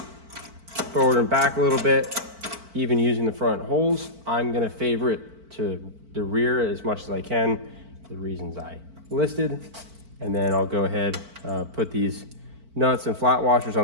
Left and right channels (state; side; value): late; left; 4.5 ms